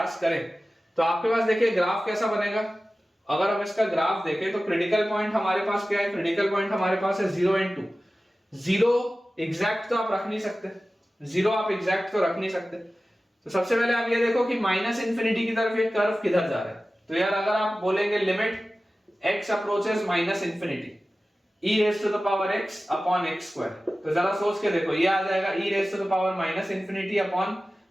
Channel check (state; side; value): normal; both; correlation 0.96